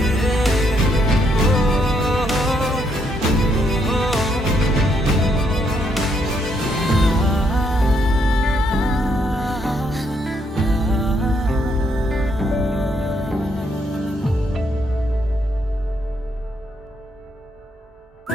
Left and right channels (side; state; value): both; normal; correlation 0.74